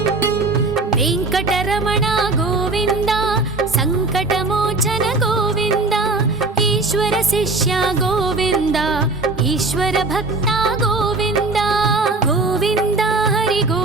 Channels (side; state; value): left; quieter; 3.4 dB